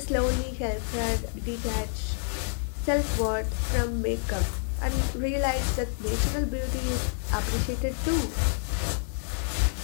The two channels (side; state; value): right; silent; 59 dB below the other